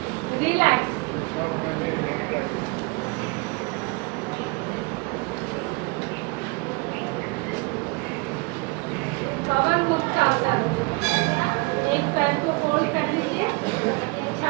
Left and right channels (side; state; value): left; quieter; 27.6 dB